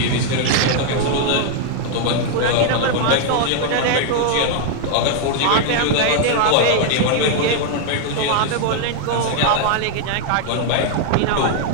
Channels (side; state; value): both; different; correlation 0.00